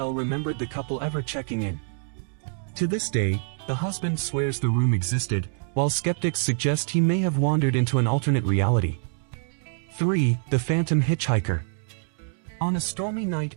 remembered the couple ever checking in. To this day, the husband swears the room existed, while skeptics suggest he may have wandered into an alternate reality. 3. The Phantom Hitchhiker. On a stormy night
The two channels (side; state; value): left; silent; 61 dB below the other